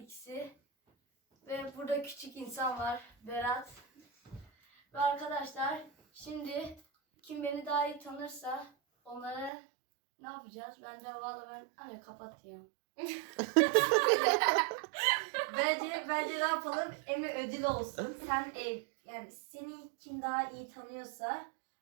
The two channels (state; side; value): drops out; left; at 9.5 s